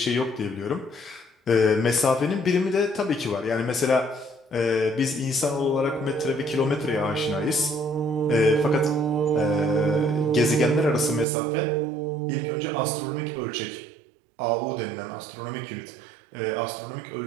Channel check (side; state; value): left; drops out; at 11.2 s